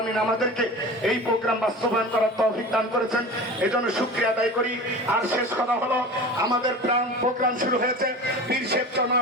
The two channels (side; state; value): both; normal; correlation 0.35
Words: আমাদেরকে এই প্রোগ্রাম বাস্তবায়ন করার তৌফিক দান করেছেন, এজন্য শুকরিয়া আদায় করি। আর শেষ কথা হলো, আমাদের প্রোগ্রাম শুরু হয়েছে পীর শেখ